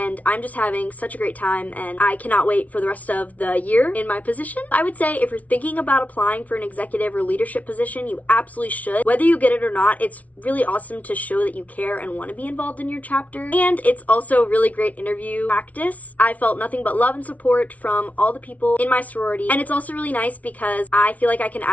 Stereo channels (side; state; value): right; late; 0.070 ms